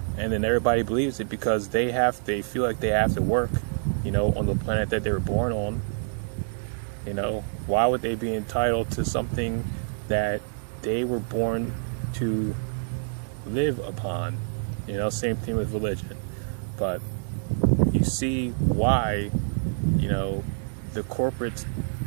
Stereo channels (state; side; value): silent; left; 60 dB below the other